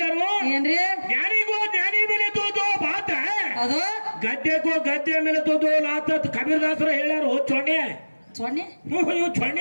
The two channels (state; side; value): inverted; both; correlation -1.00